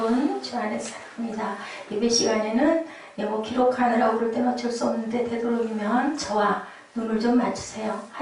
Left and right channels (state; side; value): identical; both; correlation 1.00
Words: 주 안에서 사랑합니다. 예배 시간에는 뭐 기록하느라고 그럴 때는 어쩔 수 없는데, 되도록이면 저와 눈을 좀 맞추세요.